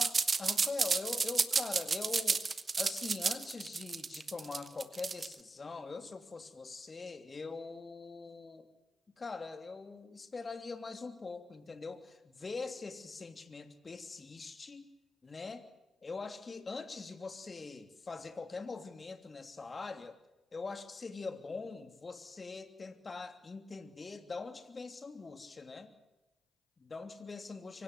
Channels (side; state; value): both; normal; correlation 0.90